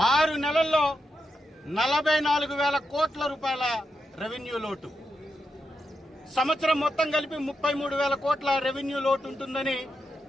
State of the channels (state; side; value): normal; both; correlation 0.86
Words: 6 నెలల్లో 44,000 కోట్ల రూపాయల రెవెన్యూ లోటు, సంవత్సరం మొత్తం కలిపి 33,000 కోట్ల రెవెన్యూ లోటు ఉంటుందని